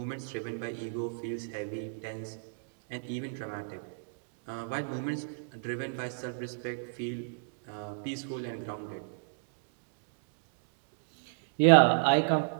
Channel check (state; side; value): silent; left; digital silence